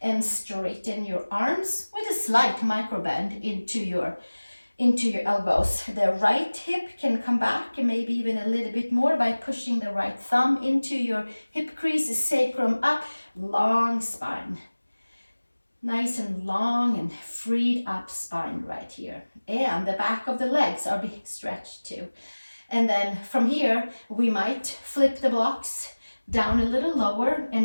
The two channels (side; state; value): both; inverted; correlation -1.00